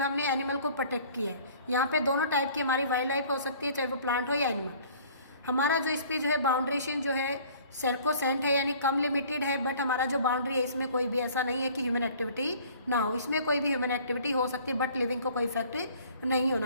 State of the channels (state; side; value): inverted; both; correlation -0.52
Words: हमने एनिमल को प्रोटेक्ट किया है। यहाँ पे दोनों टाइप की हमारी वाइल्ड लाइफ हो सकती है, चाहे वो प्लांट हो या एनिमल। हमारा जो इस पर जो है बाउंड्रेशन जो है सर्कोसेंट है यानी कम लिमिटेड है, बट हमारा जो बाउंड्री है इसमें कोई भी ऐसा नहीं है कि ह्यूमन एक्टिविटी ना हो। इसमें कोई भी ह्यूमन एक्टिविटी हो सकती है बट लिविंग को कोई इफेक्ट नहीं